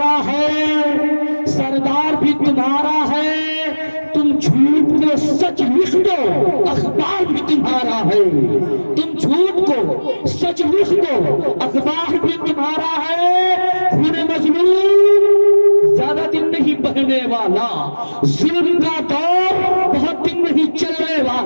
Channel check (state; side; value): inverted; both; correlation -1.00